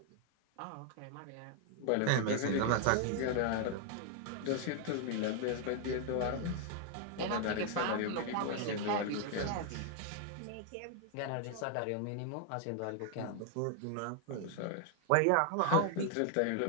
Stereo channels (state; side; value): different; both; correlation 0.00